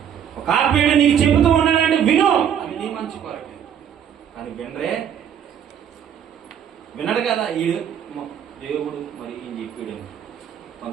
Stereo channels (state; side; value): quieter; left; 8.9 dB